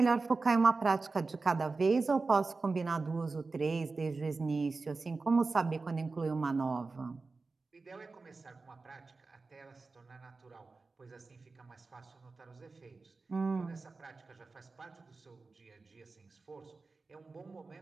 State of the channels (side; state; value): left; quieter; 3.9 dB